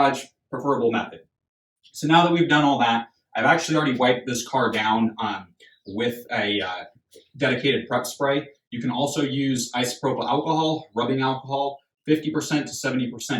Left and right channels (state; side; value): identical; both; correlation 1.00